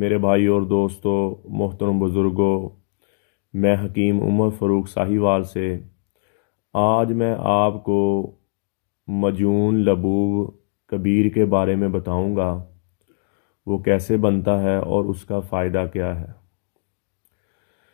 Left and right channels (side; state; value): right; silent; digital silence